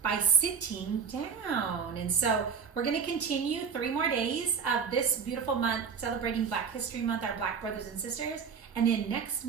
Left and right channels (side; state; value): left; quieter; 6.3 dB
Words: by Sitting Down. And so we're going to continue 3 more days of this beautiful month celebrating Black History Month, our Black brothers and sisters. And then next